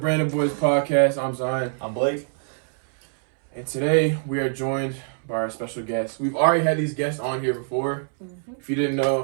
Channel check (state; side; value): silent; left; 62 dB below the other